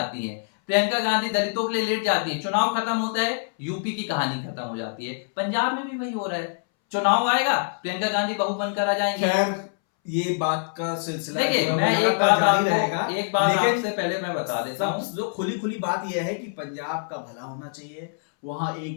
हैं। प्रियंका गांधी दलितों के लिए लेट जाती है। चुनाव खत्म होता है, यूपी की कहानी खत्म हो जाती है। पंजाब में भी वही हो रहा है, चुनाव आएगा, प्रियंका गांधी बहू बनकर आ जाएंगे। खैर, ये बात का सिलसिला देखिए, जो है मैं वो एक लगातार बात जारी आपको रहेगा। एक बात लेकिन आपसे पहले मैं बता देता हूं, जो खुली खुली बात यह है कि पंजाब का भला होना चाहिए। वहां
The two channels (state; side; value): silent; right; 62 dB below the other